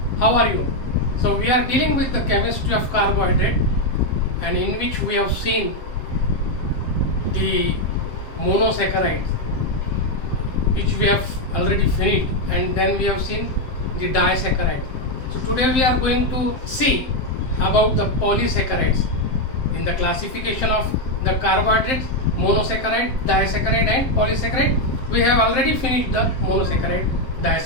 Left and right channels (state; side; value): late; right; 7.7 ms